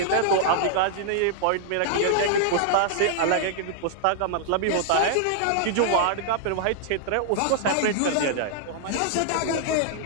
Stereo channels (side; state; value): both; different; correlation -0.01